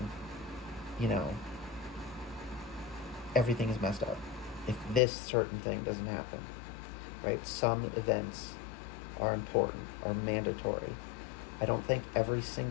everything is messed up. If this certain thing doesn't happen, right? Some events are important, are mandatory. I don't think every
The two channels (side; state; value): right; drops out; at 5.0 s